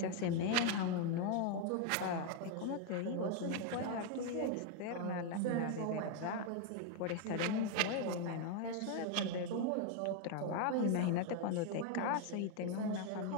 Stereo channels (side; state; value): both; different; correlation 0.01